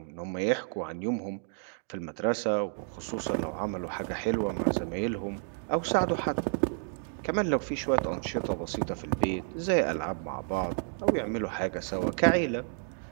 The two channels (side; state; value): left; silent; 57 dB below the other